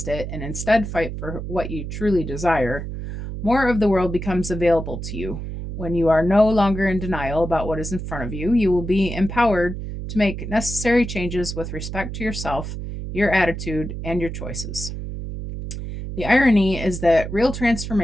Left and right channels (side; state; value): right; noise; hum, 7 dB below the sound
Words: it and instead fight for what you truly desire, more of the world becomes available to you. When you are no longer in denial about what is in front of you, you will be empowered to make necessary changes with respect to yourself, your attitude, and your choices. The irony is that real